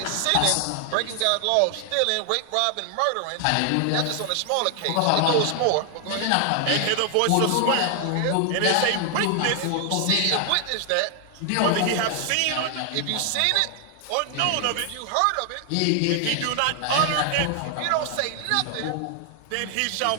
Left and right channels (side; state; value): both; different; correlation 0.00